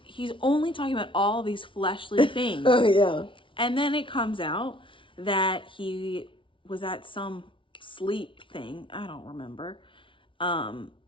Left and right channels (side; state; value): right; late; 0.25 ms